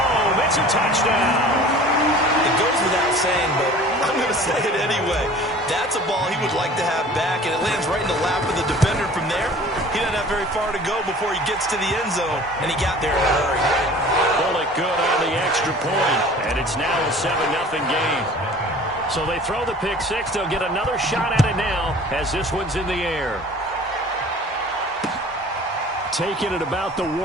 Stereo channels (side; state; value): both; normal; correlation 0.45